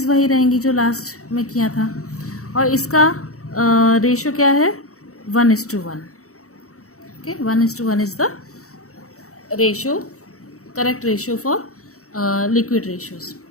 वही रहेंगी जो लास्ट में किया था, और इसका रेशो क्या है? 1:1. Okay, 1:1 is the ratio, correct ratio for liquid ratios.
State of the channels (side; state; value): right; late; 0.65 ms